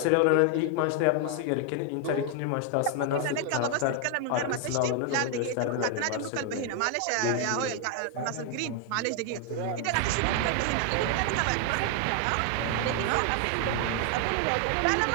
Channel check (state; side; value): different; both; correlation 0.00